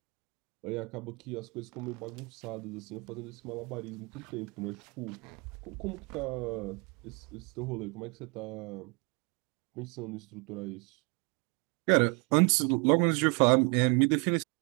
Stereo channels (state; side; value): quieter; left; 31.8 dB